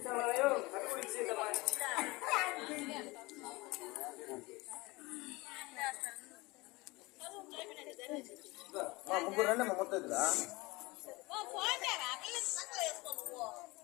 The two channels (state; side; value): quieter; right; 23.0 dB